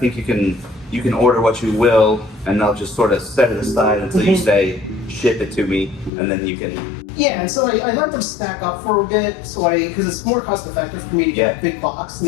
you can order what you will, and they'll just sort of set it aside until you say, ship it to me, and then you can... Yeah, and so I let them stack up for a bit, because it's more cost effective for me to get a big box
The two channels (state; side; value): drops out; right; at 6.1 s